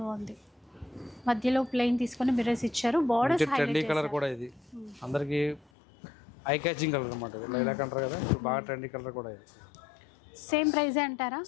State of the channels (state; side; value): drops out; right; at 5.7 s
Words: బాగుంది. మధ్యలో ప్లెయిన్ తీసుకొని మిర్రర్స్ ఇచ్చారు, బోర్డర్స్ ట్రెండీ కలర్ కూడా. ఇది అందరికి ఐ క్యాచింగ్ కలర్ అన్నమాట, లైలాక్ అంటారు కదా, బాగా ట్రెండీ కలర్ కూడా. ఇది సేమ్ ప్రైస్ అంటారా?